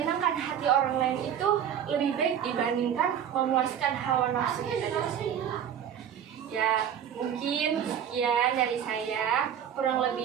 hati orang lain itu lebih baik dibandingkan memuaskan hawa nafsu kita sendiri. Ya mungkin sekian dari saya, kurang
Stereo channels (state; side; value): quieter; left; 9.1 dB